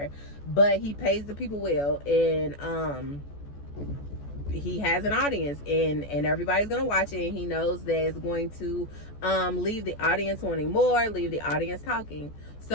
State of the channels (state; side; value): late; right; 14 ms